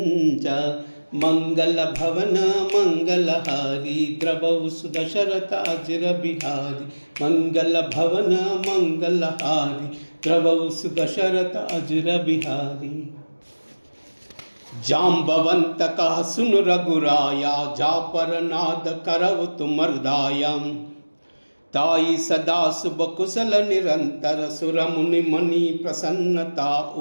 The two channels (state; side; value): inverted; both; correlation -1.00